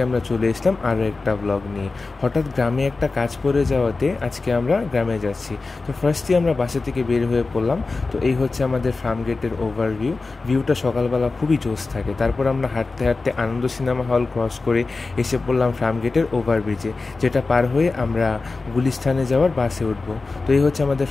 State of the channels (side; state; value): right; quieter; 3.8 dB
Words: আমরা চলে এসলাম আরও একটা ব্লগ নিয়ে। হঠাৎ গ্রামে একটা কাজ পড়ে যাওয়াতে আজকে আমরা গ্রামে যাচ্ছি। তো ফার্স্টে আমরা বাসা থেকে বের হয়ে পড়লাম। তো এই হচ্ছে আমাদের ফার্ম গেটের ওভারভিউ। ভিউটা সকালবেলা খুবই জোশ থাকে। তারপর আমরা হাঁটতে হাঁটতে আনন্দ সিনেমা হল ক্রস করে এসে পড়লাম ফার্ম গেটের ওভারব্রিজে, যেটা পার হয়ে আমরা গুলিস্তানে যাওয়ার বাসে উঠবো। তো এই হচ্ছে আমাদের